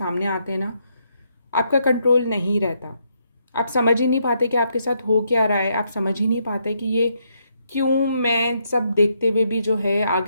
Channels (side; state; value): both; inverted; correlation -0.76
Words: आते हैं ना, आपका कंट्रोल नहीं रहता। आप समझ ही नहीं पाते कि आपके साथ हो क्या रहा है, आप समझ ही नहीं पाते कि ये क्यों, मैं सब देखते हुए भी जो है